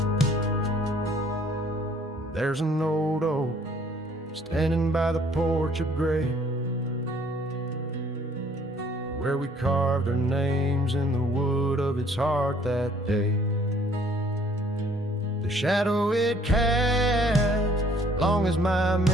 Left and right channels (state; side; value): normal; both; correlation 0.60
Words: There's an old oak standing by the porch of gray, where we carved our names in the wood of its heart that day. The shadow it cast, long as my